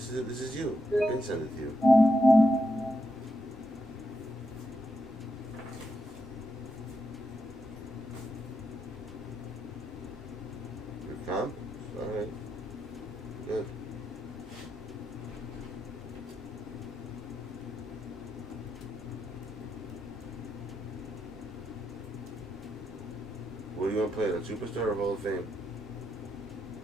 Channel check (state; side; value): normal; both; correlation 0.83